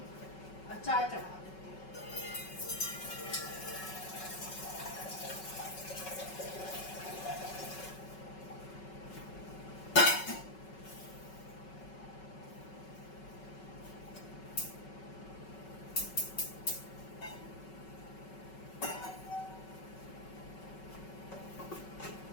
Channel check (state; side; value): late; right; 5.3 ms